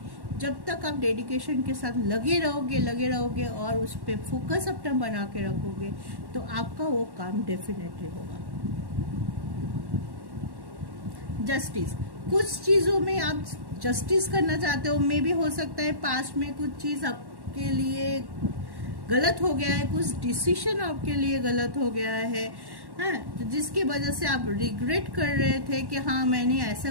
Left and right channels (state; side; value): late; left; 1.1 ms